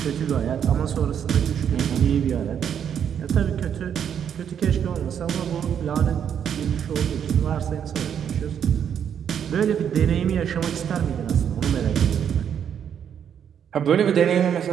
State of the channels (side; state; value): left; quieter; 8.5 dB